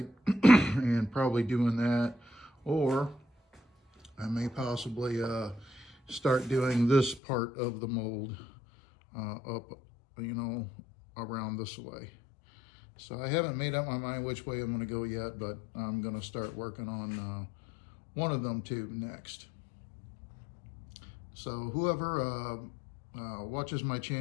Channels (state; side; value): drops out; right; at 7.2 s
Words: and probably doing that, or I may possibly start doing this part of the mold up, around this way. So I haven't made up my mind which way I'm going to go yet, but I'm going to start working on one of them too next. So whoever watches my